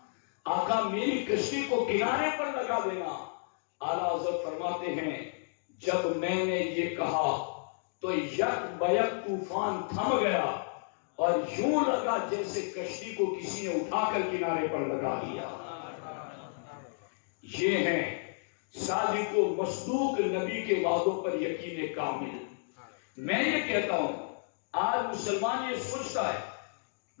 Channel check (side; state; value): right; silent; digital silence